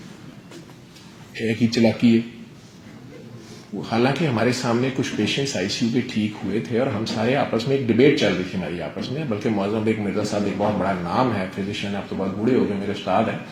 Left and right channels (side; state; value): both; identical; correlation 1.00